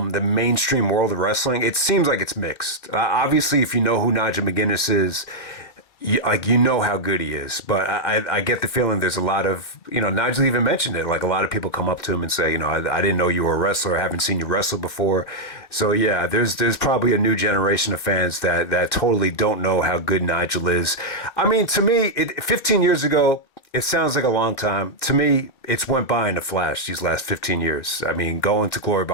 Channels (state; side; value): late; right; 2.3 ms